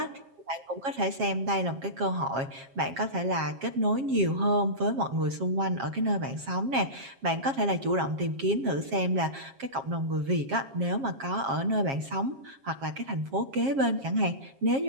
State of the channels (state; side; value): late; left; 7.4 ms